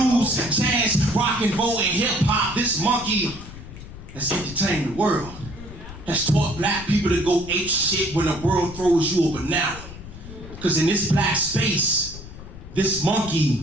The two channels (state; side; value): noise; left; rumble, 14 dB below the sound